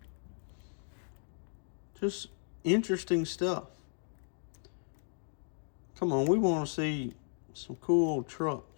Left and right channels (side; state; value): right; silent; 54 dB below the other